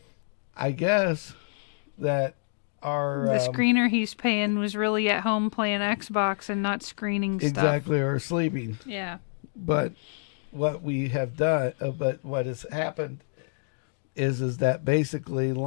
I guess that our The screener he's paying was really at home playing Xbox and not screening stuff. exactly or sleeping. Yeah. But what we have done, but what has happened is that basically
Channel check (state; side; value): silent; right; digital silence